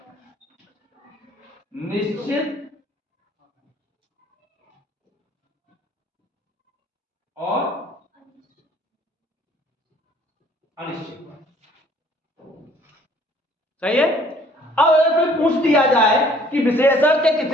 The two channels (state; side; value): normal; both; correlation 0.57